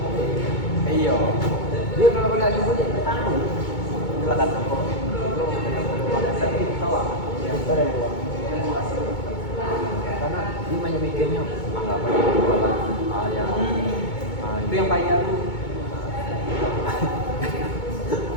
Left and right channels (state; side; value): late; right; 2.2 ms